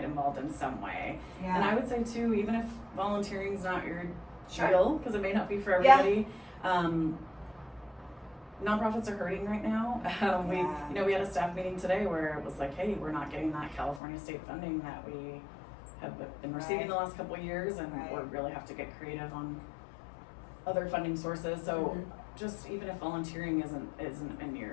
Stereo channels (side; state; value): right; drops out; at 14.0 s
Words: involved in some way. And I would say too, even if volunteering's not your deal, because it may not be for everybody, nonprofits are hurting right now. We had a staff meeting today where it was like, hey, we're not getting that California state funding that we have been receiving the last couple of years, and we really have to get creative on other funding sources. So just even if volunteering isn't in